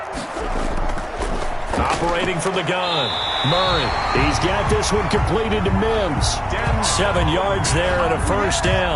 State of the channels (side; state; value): both; identical; correlation 1.00